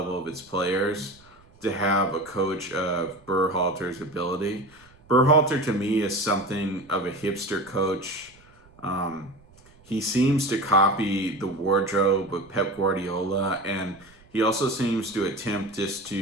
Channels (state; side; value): noise; right; rumble, 28 dB below the sound